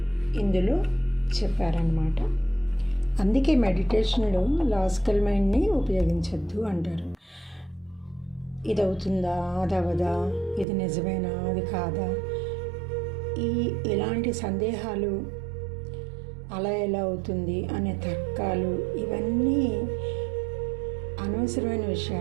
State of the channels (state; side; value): drops out; left; at 10.7 s